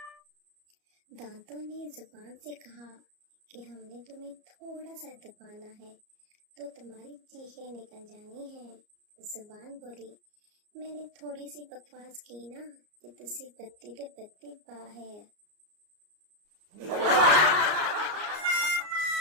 دانتوں نے زبان سے کہا کہ ہم نے تمہیں تھوڑا سا دبانا ہے تو تمہاری چیخیں نکل جانی ہیں۔ زبان بولی، میں نے تھوڑی سی بکواس کی نا کہ تسی بتی تے بتی باہر۔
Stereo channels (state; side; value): late; left; 34 ms